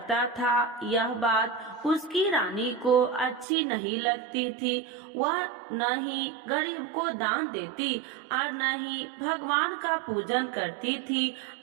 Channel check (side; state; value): left; drops out; at 3.5 s